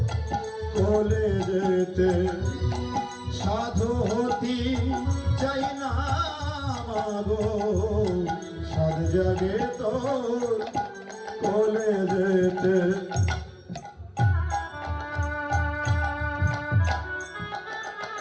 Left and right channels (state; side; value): identical; both; correlation 1.00